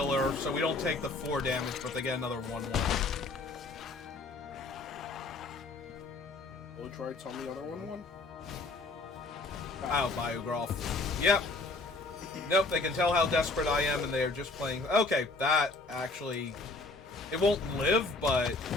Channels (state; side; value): quieter; right; 3.3 dB